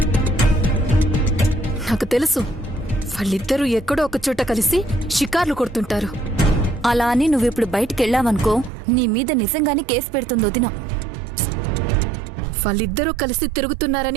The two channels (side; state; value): left; drops out; at 8.7 s